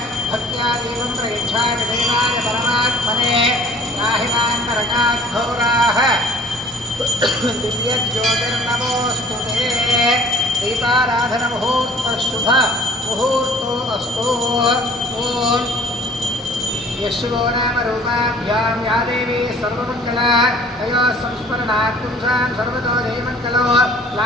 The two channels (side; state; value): both; normal; correlation 0.51